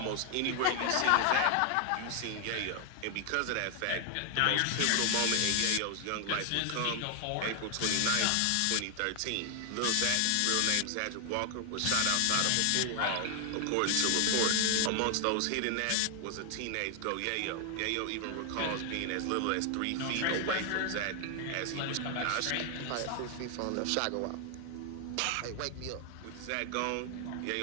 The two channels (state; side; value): different; both; correlation 0.00